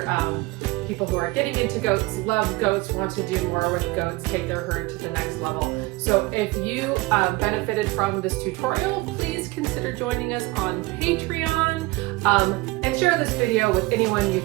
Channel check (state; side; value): quieter; left; 21.8 dB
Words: people who are getting into goats, love goats, want to do more with goats, take their herd to the next level. So if you benefited from this tutorial, please consider joining us on Patreon and share this video with anyone you